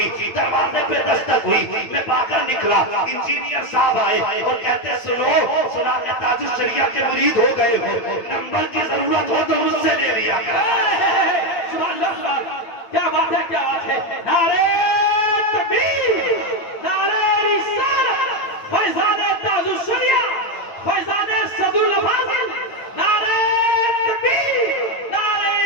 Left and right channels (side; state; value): right; late; 9.0 ms